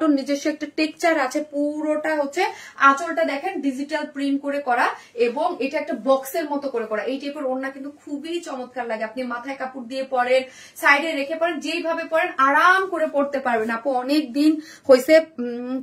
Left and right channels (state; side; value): identical; both; correlation 1.00